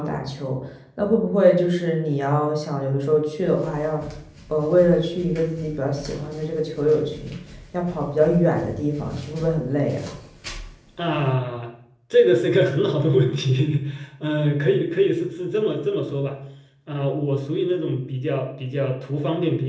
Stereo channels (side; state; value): both; identical; correlation 1.00